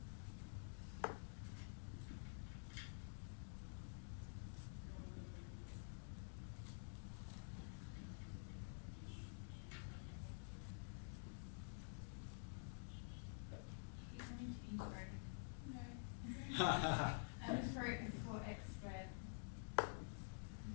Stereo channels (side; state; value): right; silent; digital silence